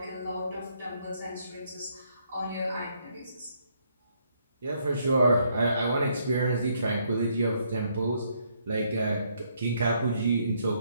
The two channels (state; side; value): inverted; both; correlation -0.72